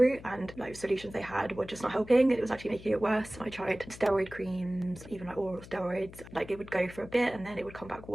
and like solutions they had were just not helping. It was actually making it worse. I tried steroid creams, even like oral steroids. Like it would go for a bit and then it would come back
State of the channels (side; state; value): left; noise; hum, 17 dB below the sound